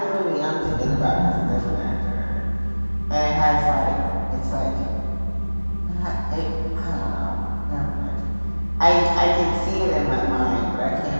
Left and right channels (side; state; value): both; inverted; correlation -1.00